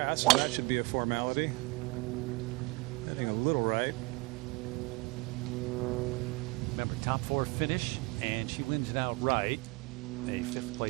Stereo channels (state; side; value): quieter; left; 24.9 dB